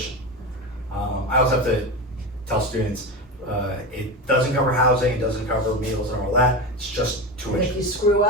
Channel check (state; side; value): normal; both; correlation 0.21